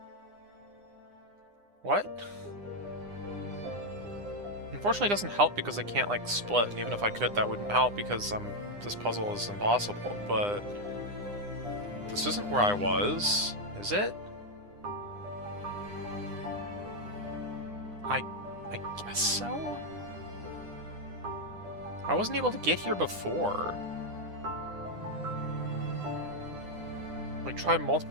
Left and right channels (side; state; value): left; late; 9.8 ms